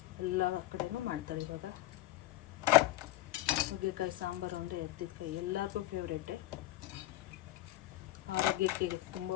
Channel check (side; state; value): right; quieter; 16.0 dB